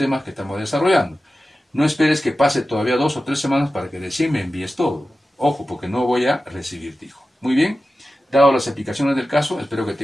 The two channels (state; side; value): normal; both; correlation 0.94